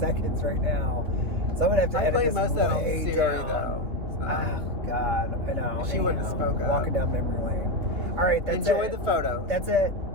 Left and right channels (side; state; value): left; late; 2.9 ms